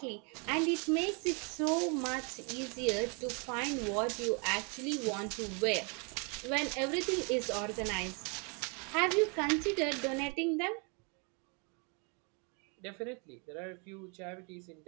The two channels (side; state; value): left; quieter; 34.5 dB